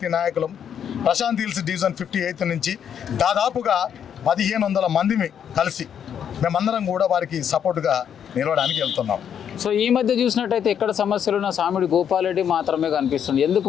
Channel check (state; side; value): quieter; right; 8.6 dB